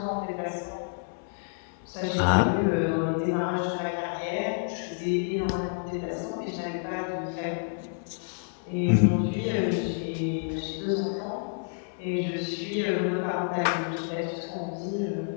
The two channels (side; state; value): right; silent; 59 dB below the other